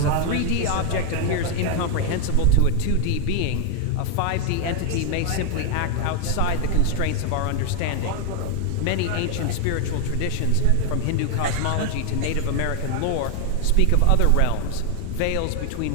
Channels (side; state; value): both; different; correlation 0.01